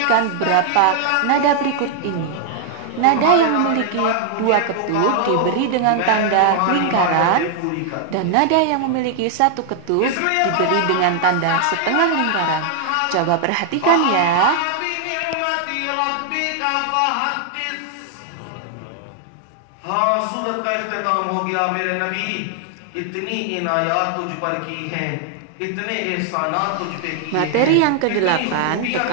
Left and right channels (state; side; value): different; both; correlation 0.00